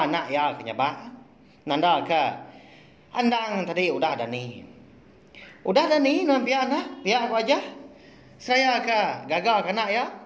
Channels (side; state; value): both; identical; correlation 1.00